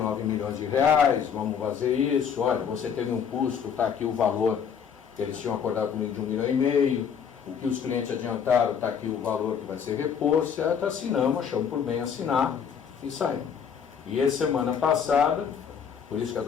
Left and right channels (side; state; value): right; quieter; 7.3 dB